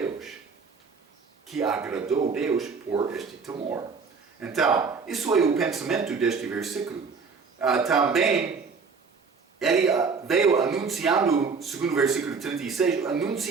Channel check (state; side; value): quieter; left; 5.1 dB